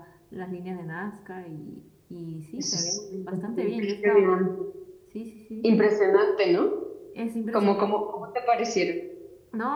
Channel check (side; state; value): both; identical; correlation 1.00